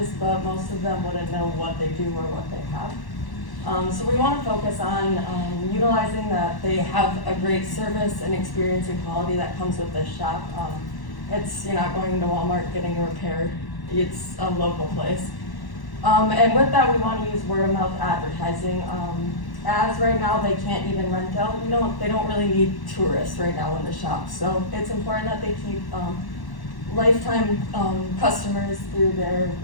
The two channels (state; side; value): late; right; 1.1 ms